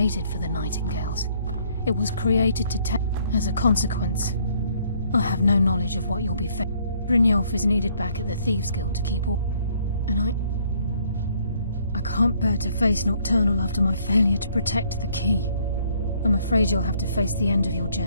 for the Nightingales. It was created to take. As a consequence, I have no knowledge of what you'll be facing. Brynjolf is needed back at the Thieves' Guild to keep all. And I can't bear to face Nocturnal after my failure to protect the key. I'm afraid you'll have to face the end of your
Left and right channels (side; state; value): both; inverted; correlation -0.64